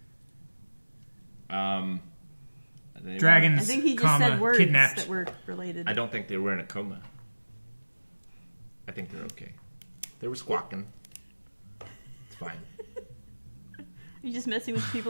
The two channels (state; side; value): inverted; both; correlation -1.00